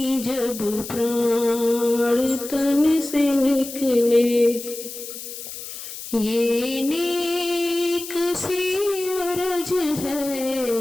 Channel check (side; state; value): left; noise; hiss, 10 dB below the sound